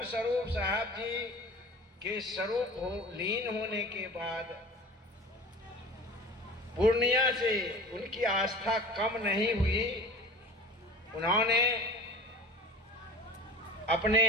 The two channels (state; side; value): normal; both; correlation 0.40